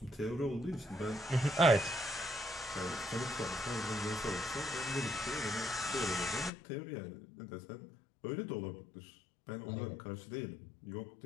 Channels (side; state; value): right; drops out; at 6.5 s